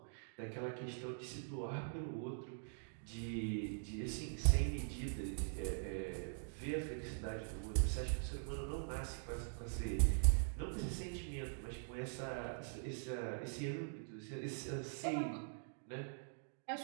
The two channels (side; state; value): left; silent; digital silence